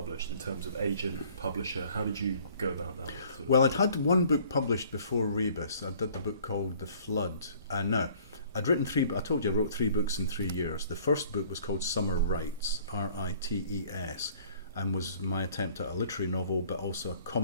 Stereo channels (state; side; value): inverted; both; correlation -0.55